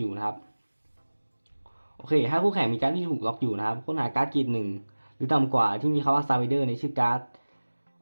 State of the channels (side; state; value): both; inverted; correlation -1.00